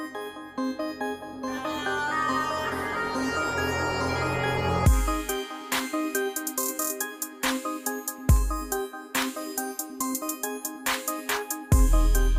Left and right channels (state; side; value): identical; both; correlation 1.00